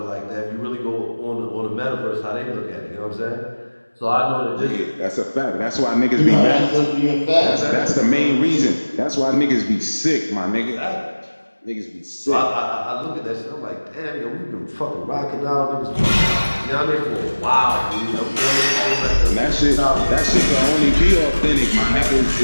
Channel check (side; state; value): both; inverted; correlation -1.00